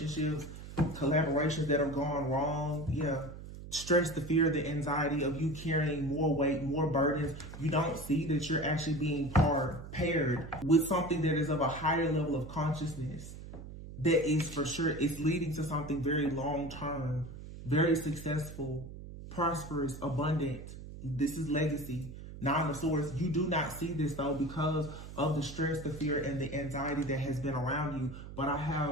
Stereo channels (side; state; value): right; noise; hum, 12 dB below the sound